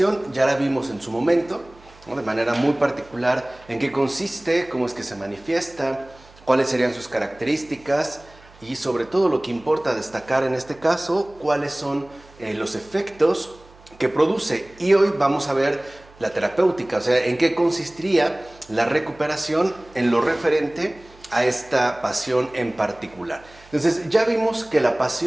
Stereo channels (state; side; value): noise; right; hum, 25 dB below the sound